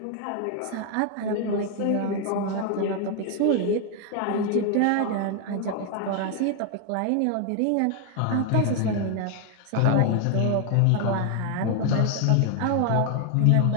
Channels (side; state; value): both; different; correlation 0.01